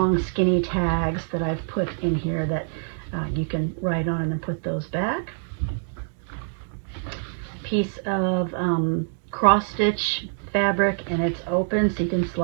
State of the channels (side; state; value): left; silent; digital silence